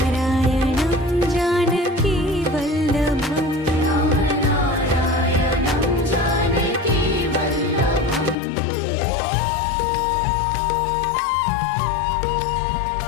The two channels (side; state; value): right; drops out; at 8.3 s